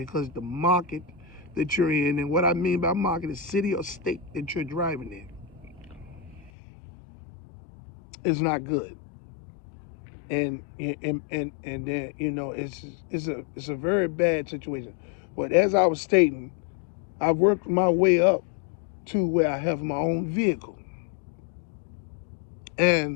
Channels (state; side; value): drops out; right; at 6.5 s